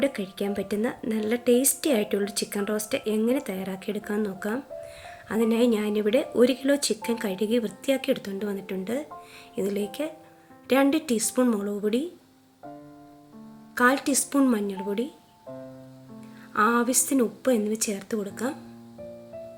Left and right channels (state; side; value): identical; both; correlation 1.00